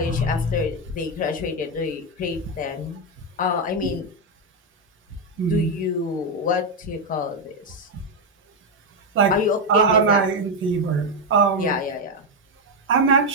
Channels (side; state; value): both; normal; correlation 0.05